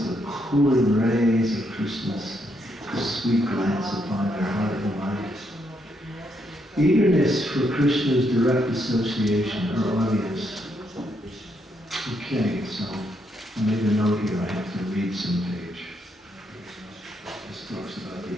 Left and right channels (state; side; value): normal; both; correlation 0.76